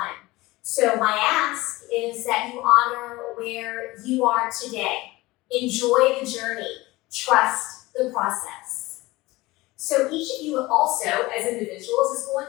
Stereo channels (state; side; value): quieter; right; 20.2 dB